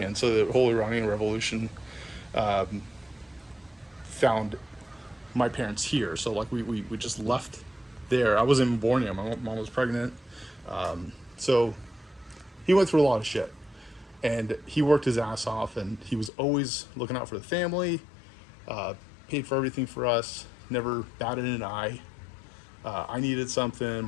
so the whole Iranian Revolution found my parents here. So like we just left there. I wasn't even born yet. My mom was pregnant. So he went through a lot of shit, and he worked his ass off, and he was always looking out for the family, paid for everything for us, never batted an eye. I needed something,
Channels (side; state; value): right; drops out; at 16.3 s